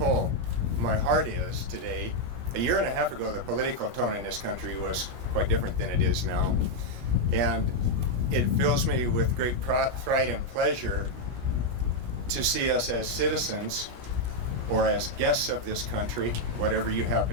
my heart is today. A year and a half ago, the political tone in this country was quite different than it is now. And it fills me with great pride and pleasure to see us as citizens or as guests of this country, whatever you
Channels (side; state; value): left; late; 17 ms